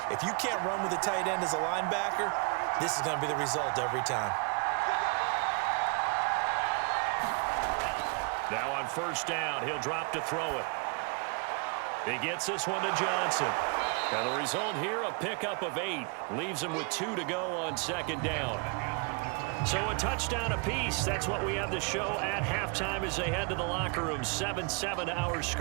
If you can't run with a tight end as a linebacker, this is going to be the result every time. Now on 1st down, he'll drop to throw it. He gets this one to Johnson. And the result here, a pickup of 8. Leaves him with 2 to go on 2nd down. So a touchdown apiece. That's what we have the show at halftime as they head to the locker room. 7-7 our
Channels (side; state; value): left; quieter; 34.6 dB